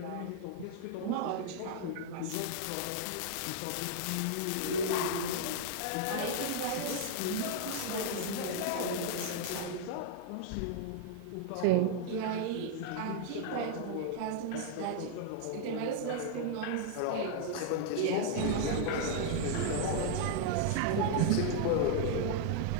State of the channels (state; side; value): different; both; correlation -0.01